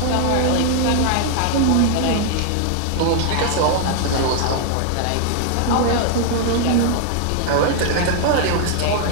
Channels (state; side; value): different; both; correlation 0.00